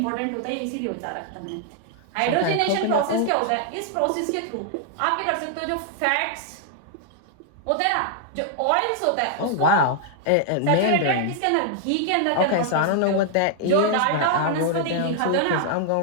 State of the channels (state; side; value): different; both; correlation -0.01